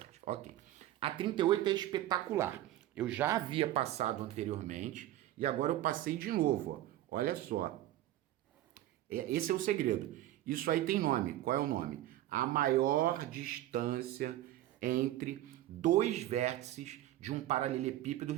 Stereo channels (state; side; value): quieter; left; 14.2 dB